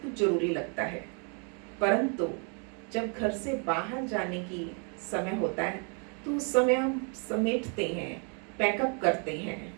कुछ जरूरी लगता है, परंतु जब घर से बाहर जाने की समय होता है तो उस समय हम समेटते हैं, पैकअप करते हैं।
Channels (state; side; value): quieter; left; 38.6 dB